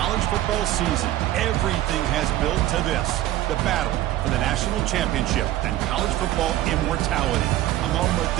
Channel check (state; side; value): quieter; left; 14.5 dB